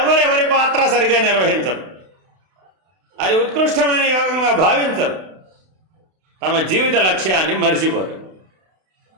పాత్ర సరిగా నిర్వహించరు, అది ఉత్కృష్టమైన యోగంగా భావించరు, తమ జీవిత లక్ష్యాన్ని మరిచిపోరు.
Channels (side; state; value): left; late; 32 ms